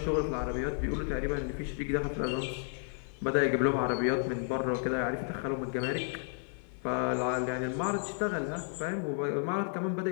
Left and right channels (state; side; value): silent; right; 56 dB below the other